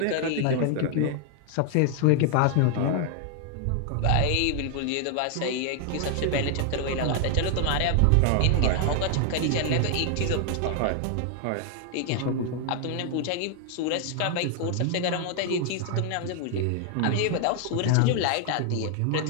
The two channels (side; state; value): both; different; correlation 0.00